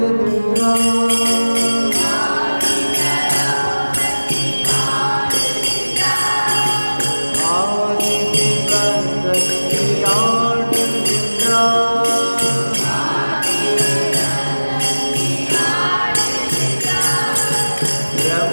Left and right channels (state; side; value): inverted; both; correlation -1.00